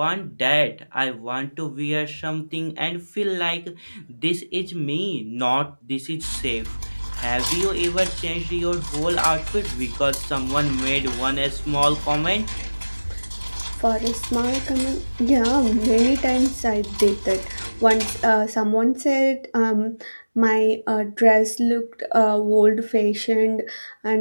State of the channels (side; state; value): both; inverted; correlation -1.00